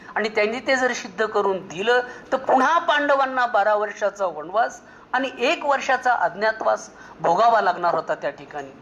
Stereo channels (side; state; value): both; identical; correlation 1.00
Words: आणि त्यांनी ते जर सिद्ध करून दिलं, तर पुन्हा पांडवांना 12 वर्षाचा वनवास आणि 1 वर्षाचा अज्ञातवास भोगावा लागणार होता त्या ठिकाणी.